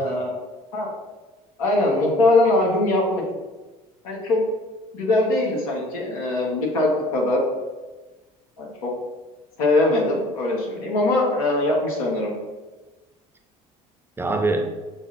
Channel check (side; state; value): both; normal; correlation 0.52